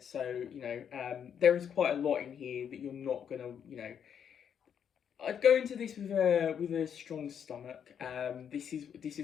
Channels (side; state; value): right; quieter; 8.2 dB